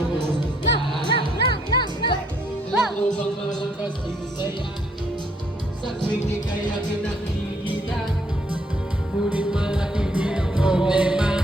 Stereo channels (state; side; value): normal; both; correlation 0.68